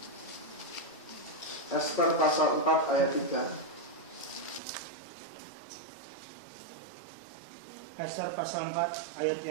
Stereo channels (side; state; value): left; drops out; at 4.6 s